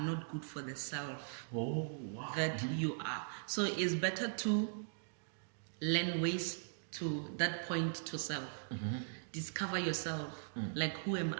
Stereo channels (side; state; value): left; silent; digital silence